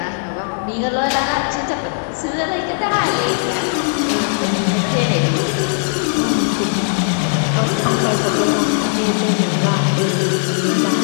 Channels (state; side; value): silent; right; digital silence